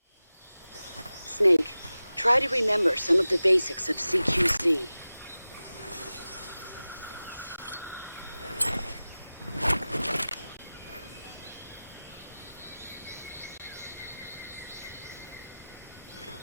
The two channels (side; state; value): both; inverted; correlation -0.96